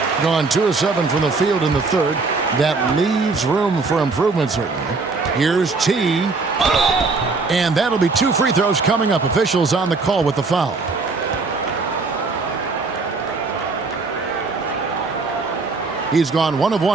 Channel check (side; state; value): left; quieter; 4.0 dB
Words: Gone 2 of 7 from the field in the third. That leaves room for improvement, certainly. Here's T. And that'll be 2 free throws coming up. Officials on the call with the foul. He's gone 1 of